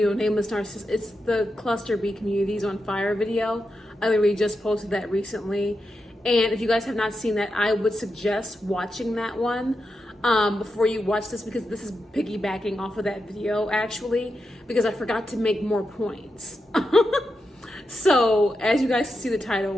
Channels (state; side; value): normal; both; correlation 0.87